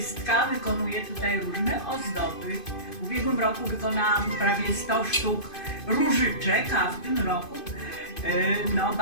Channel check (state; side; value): late; right; 2.5 ms